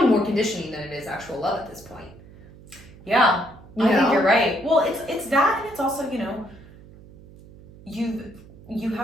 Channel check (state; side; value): noise; right; hum, 21 dB below the sound